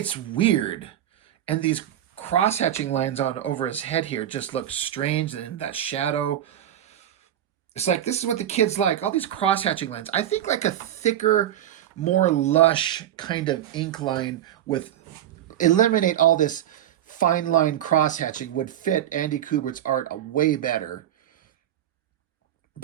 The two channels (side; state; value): left; quieter; 11.4 dB